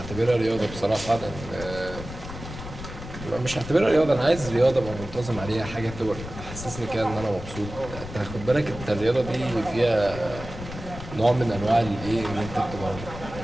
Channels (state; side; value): noise; left; rumble, 11 dB below the sound